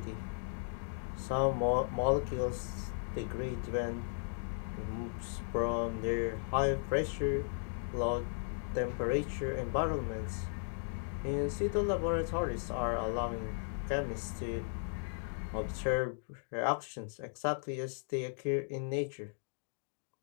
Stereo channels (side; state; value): right; silent; digital silence